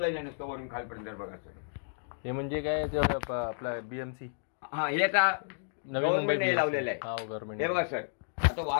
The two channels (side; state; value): right; silent; digital silence